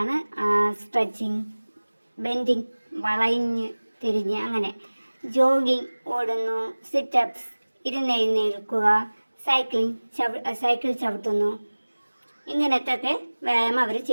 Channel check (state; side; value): inverted; both; correlation -1.00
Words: സ്ട്രെച്ചിങ്. ബെൻഡിങ്, വളഞ്ഞ് തിരിഞ്ഞ്, അങ്ങനെ. ജോഗിങ്, ഓടുന്നു. സിറ്റപ്സ്, ഇരുന്നെഴുന്നേൽക്കുക. സൈക്കിൾ ചവിട്ടുന്നു. ഇങ്ങനത്തെയൊക്കെ വ്യായാമം അവർ